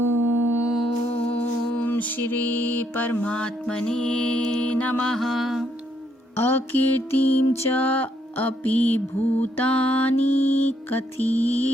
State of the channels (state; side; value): normal; both; correlation 0.73